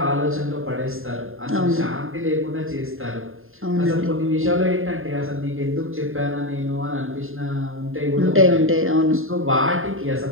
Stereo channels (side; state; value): left; late; 0.60 ms